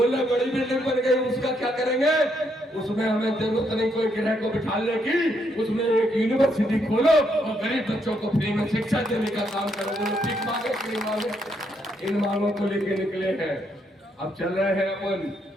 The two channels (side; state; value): both; normal; correlation 0.75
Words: बड़ी बिल्डिंग बन गई, उसका क्या करेंगे? उसमें हमें जरूरत नहीं कोई गृह को बिठाने की, उसमें एक यूनिवर्सिटी खोलो और गरीब बच्चों को फ्री में शिक्षा देने का काम करो। बोलो ठीक मांगे कि नहीं मांगे? इन मांगों को लेके निकले हैं। अब चल रहे हैं अपन